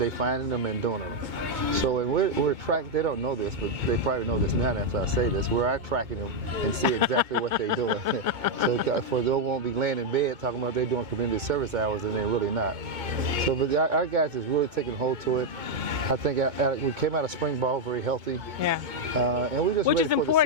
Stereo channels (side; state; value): left; late; 2.2 ms